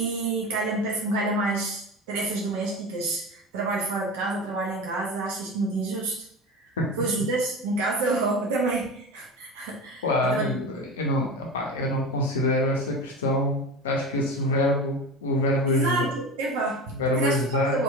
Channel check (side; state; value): both; normal; correlation 0.28